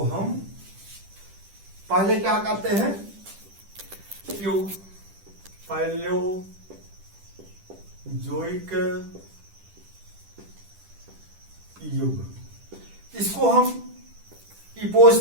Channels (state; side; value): late; left; 10 ms